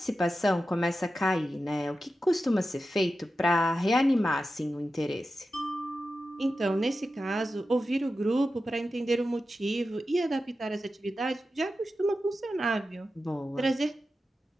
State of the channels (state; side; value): normal; both; correlation 0.92